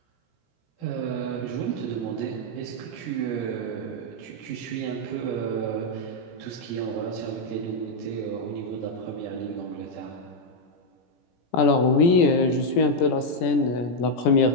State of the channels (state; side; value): late; right; 17 ms